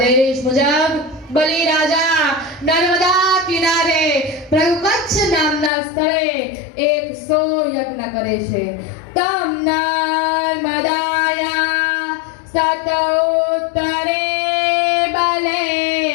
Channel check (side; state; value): right; drops out; at 5.7 s